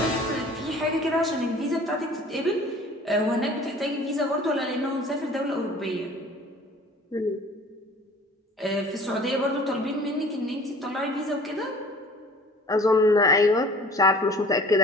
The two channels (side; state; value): both; normal; correlation 0.48